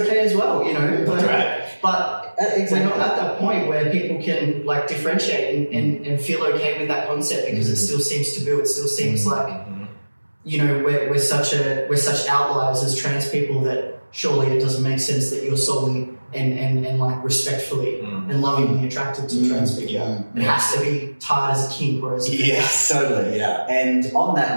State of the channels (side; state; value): both; inverted; correlation -1.00